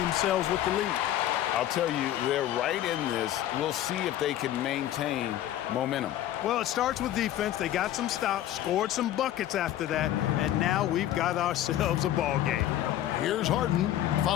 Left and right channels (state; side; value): quieter; right; 12.6 dB